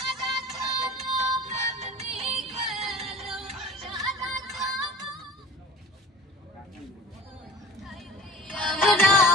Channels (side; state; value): both; normal; correlation 0.42